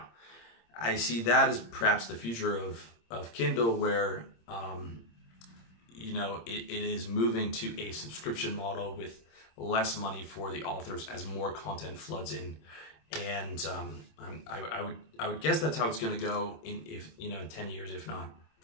I see that as perhaps the future of Kindle, where it is moving to a subscription model with less money for the authors as more content floods in. And I would guess that's how it's going to go in 10 years, if not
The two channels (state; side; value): late; right; 26 ms